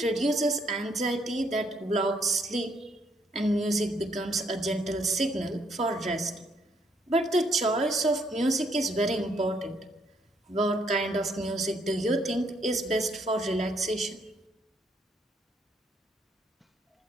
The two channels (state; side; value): normal; both; correlation 0.70